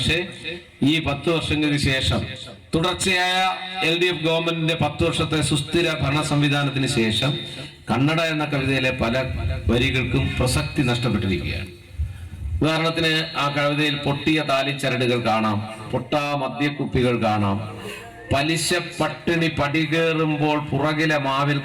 ഈ 10 വർഷങ്ങൾക്ക് ശേഷം തുടർച്ചയായ LDF ഗവൺമെന്റിന്റെ 10 വർഷത്തെ സുസ്ഥിര ഭരണ സംവിധാനത്തിന് ശേഷം കന്നഡ എന്ന കവിതയിലെ പല വരികൾക്കും പ്രസക്തി നഷ്ടപ്പെട്ടിരിക്കുകയാണ്. ഉദാഹരണത്തിന് ആ കവിതയിൽ പൊട്ടിയ താലിച്ചരടുകൾ കാണാം, പൊട്ടാ മദ്യക്കുപ്പികൾ കാണാം, പലിശ പട്ടിണി പടികേറുമ്പോൾ പുറകിലെ മാവിൽ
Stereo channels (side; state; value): both; identical; correlation 1.00